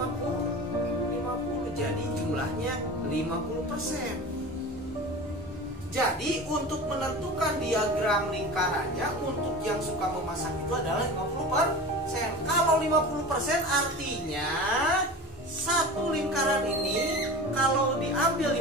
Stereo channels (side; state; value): both; normal; correlation 0.33